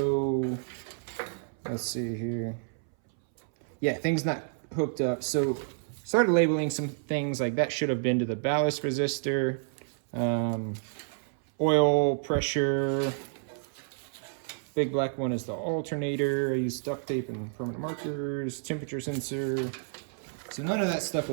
let's see here. Yeah, things not hooked up. So started labeling some things like that should have been to the ballast resistor, oil pressure. Big black one is the alternator. I used duct tape and permanent markers, temperature sensor. So none of that stuff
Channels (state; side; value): silent; left; 58 dB below the other